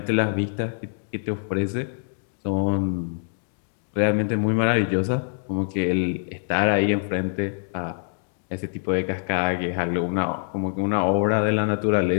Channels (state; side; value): silent; right; digital silence